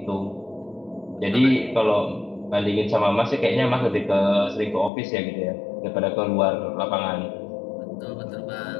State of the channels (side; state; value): right; drops out; at 4.9 s